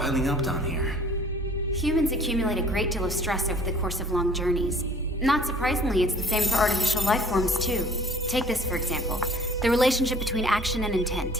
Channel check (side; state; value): both; normal; correlation 0.51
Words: up down here. Humans accumulate a great deal of stress over the course of long journeys. Not surprisingly, it's the same for artificial life forms, too. Take this, for example. The relationship between action and